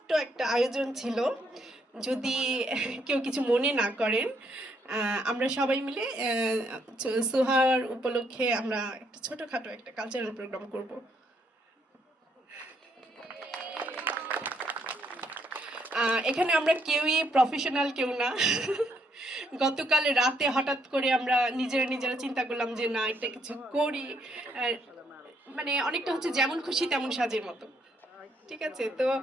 একটা আয়োজন ছিল, যদি কেউ কিছু মনে না করেন। আমরা সবাই মিলে সোহার উপলক্ষে আমরা একটা ছোটখাটো একটা কালচারাল প্রোগ্রাম করব। এখানে আমরা কেউই প্রফেশনাল কেউ না। গতকাল রাতে হঠাৎ করে আমরা নিজেরা চিন্তা করলাম যে না, একটা কিছু করি। মানে অনেকটা হচ্ছে যেমন খুশি তেমন সাজের মতো, ঠিক আছে? তো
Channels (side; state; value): both; normal; correlation 0.73